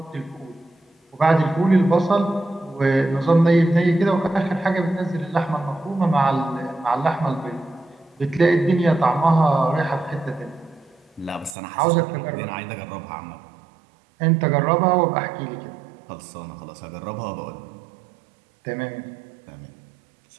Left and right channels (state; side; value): drops out; left; at 11.6 s